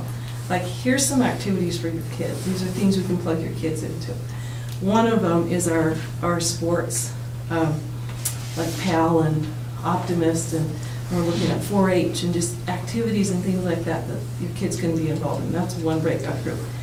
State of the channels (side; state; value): both; identical; correlation 1.00